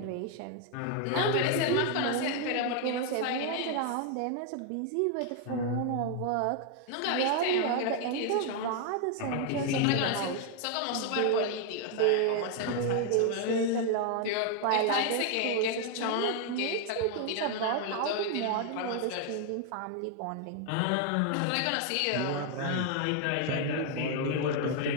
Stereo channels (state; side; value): different; both; correlation 0.00